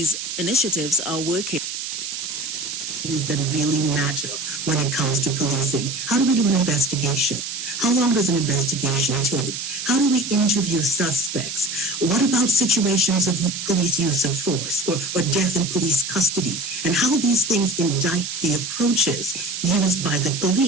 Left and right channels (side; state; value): right; noise; hiss, 6 dB below the sound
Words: initiatives are working. That really matter when it comes to policing. How do we do an investigation? How long does an investigation take? How do we interview suspects? What about situations of police use of force or death in police custody? And how these things indict the approaches used by the